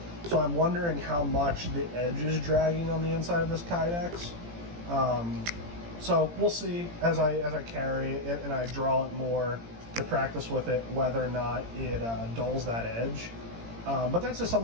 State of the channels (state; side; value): late; left; 17 ms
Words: So I'm wondering how much the edge is dragging on the inside of this Kydex. So we'll see as I carry it and I draw it more to practice with it, whether or not it dulls that edge. But that's just